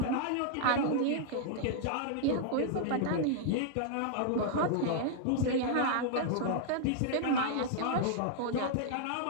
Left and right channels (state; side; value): different; both; correlation -0.01